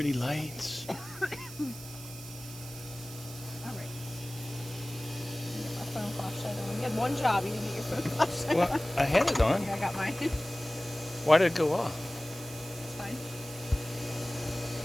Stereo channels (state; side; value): noise; right; hiss, 14 dB below the sound